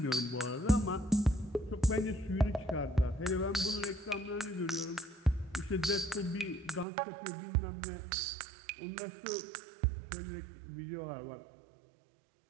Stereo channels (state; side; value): drops out; left; at 6.9 s